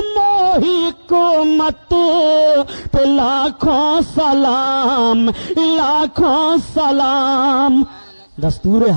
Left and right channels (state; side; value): inverted; both; correlation -1.00